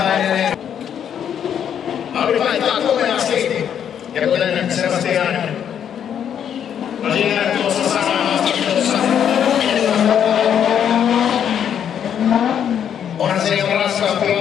edelleen. Audi vaihtaa komeasti. Ja kuten Sebastian Lagier tuossa sanoi haastattelussa. Onhan se ihan raskaampi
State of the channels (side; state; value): right; quieter; 8.9 dB